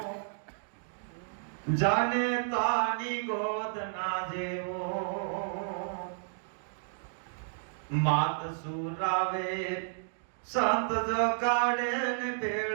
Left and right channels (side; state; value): left; silent; digital silence